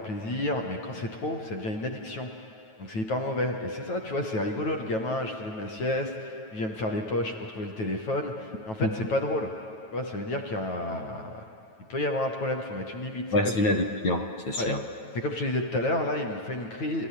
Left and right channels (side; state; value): right; late; 9.2 ms